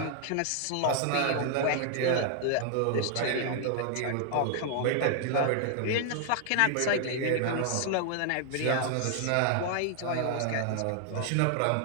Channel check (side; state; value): both; different; correlation 0.00